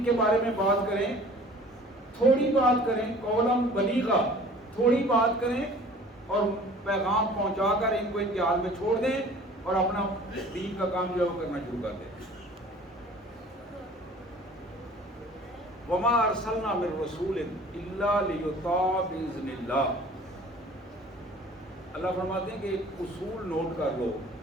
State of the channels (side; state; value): both; normal; correlation 0.48